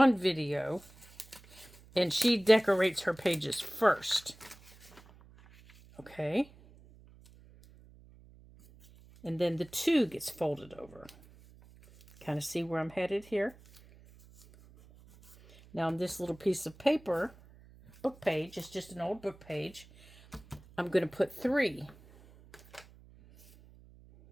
video, and she decorates her pages first. Okay. And then the 2 gets folded over. Kind of see where I'm headed here? Now on this little piece of paper, book page, it's just an old book page, I'm going to put 3.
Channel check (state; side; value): noise; right; hum, 24 dB below the sound